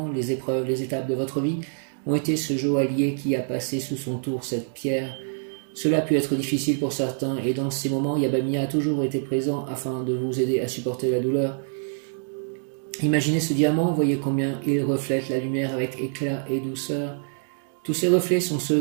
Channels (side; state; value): left; silent; digital silence